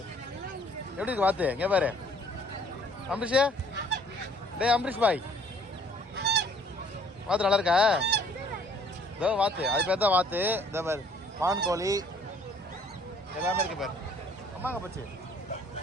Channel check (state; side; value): normal; both; correlation 0.58